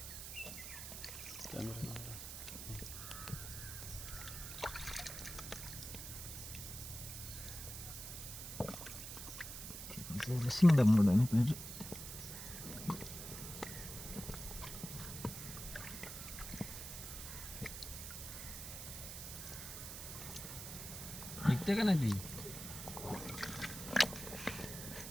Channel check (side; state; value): right; noise; hiss, 8 dB below the sound